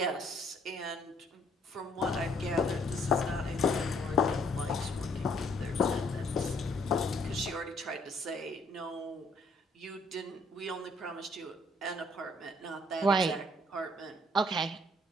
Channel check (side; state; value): both; normal; correlation 0.65